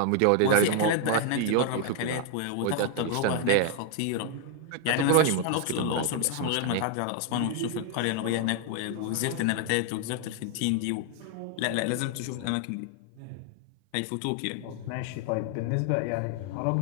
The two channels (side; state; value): both; different; correlation 0.00